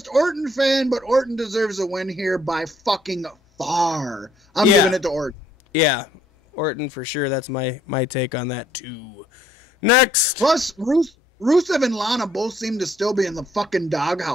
Orton fan, but Orton deserves a win here by fucking far. I'm giving it to Orton. Yeah, Orton for sure. That's my take on that too. Next. Plus, Rusev and Lana both seem to still be in the fucking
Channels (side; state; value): both; normal; correlation 0.65